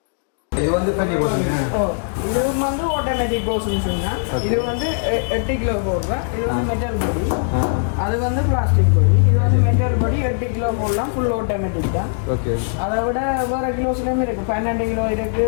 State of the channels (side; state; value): right; silent; digital silence